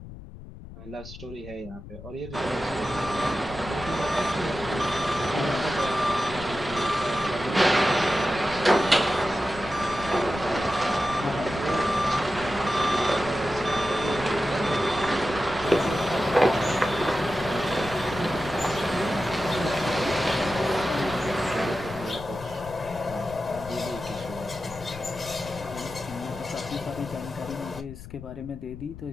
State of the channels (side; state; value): left; noise; rumble, 14 dB below the sound